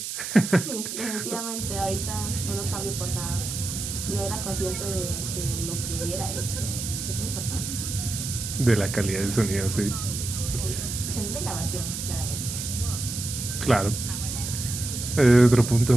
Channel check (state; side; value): noise; right; hiss, 5 dB below the sound